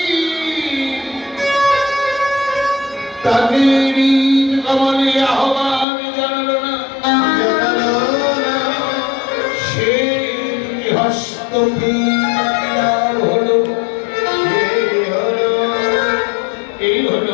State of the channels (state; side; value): drops out; right; at 5.9 s